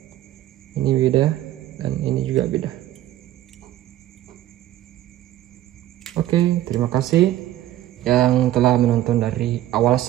Ini beda dan ini juga beda. Oke, terima kasih yang telah menonton dari awal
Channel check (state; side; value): quieter; left; 13.8 dB